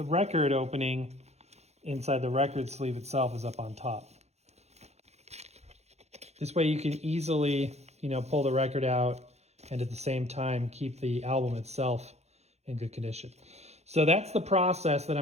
record opening inside the record sleeve itself is up on top. This way you can easily, pull the record out and at the same time keep the album itself in good condition. So that's the process that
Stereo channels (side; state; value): left; late; 0.31 ms